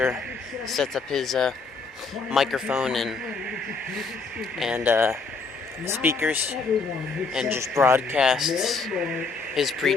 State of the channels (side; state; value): right; quieter; 4.3 dB